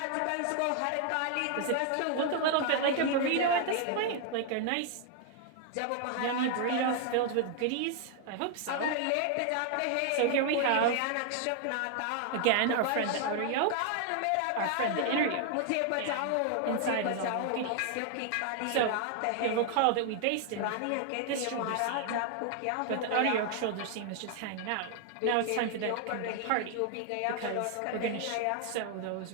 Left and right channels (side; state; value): both; different; correlation 0.00